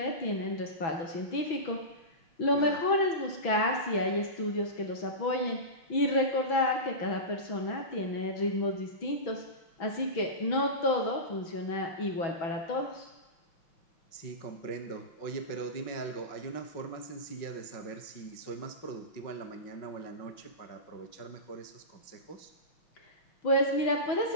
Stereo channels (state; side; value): late; right; 6.1 ms